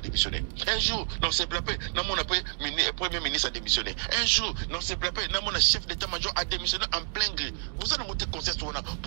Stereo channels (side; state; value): left; silent; 58 dB below the other